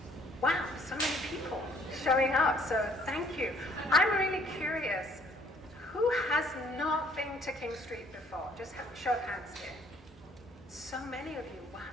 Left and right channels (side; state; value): both; normal; correlation 0.61